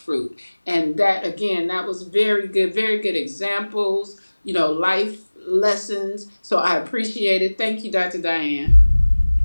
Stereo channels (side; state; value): both; inverted; correlation -1.00